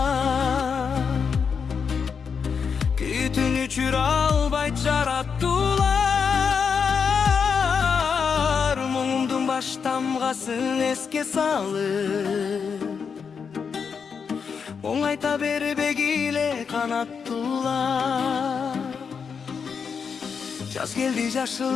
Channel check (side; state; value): right; quieter; 6.2 dB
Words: Күтүн өчүрө албайт жараттуулар Муңумдун баш тамгасын эске салып Оңайта бербегиле канаттуулар Жаз келди жашыл